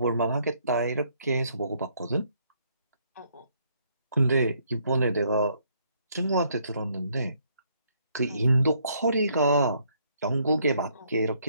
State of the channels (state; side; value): inverted; both; correlation -0.69